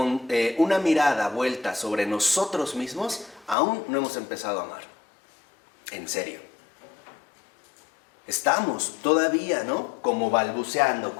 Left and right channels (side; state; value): right; drops out; at 3.6 s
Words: una mirada vuelta sobre nosotros mismos, aún no hemos empezado a amar. En serio. Estamos todavía, ¿no? Como balbuceando,